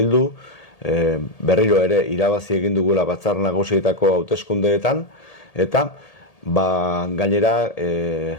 berriro ere irabazi egin dugula batzar nagusietako hauteskundeetan, eta gainera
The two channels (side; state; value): right; late; 1.8 ms